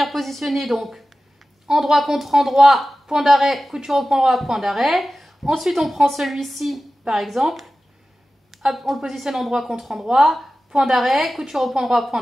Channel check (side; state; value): both; normal; correlation 0.95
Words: positionner donc endroit contre endroit, point d'arrêt, couture au point droit, point d'arrêt. Ensuite, on prend celui-ci, par exemple, hop, on le positionne endroit contre endroit, point d'arrêt, couture au point droit, point